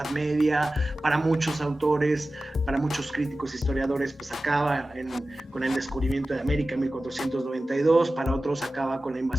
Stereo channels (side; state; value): both; normal; correlation 0.95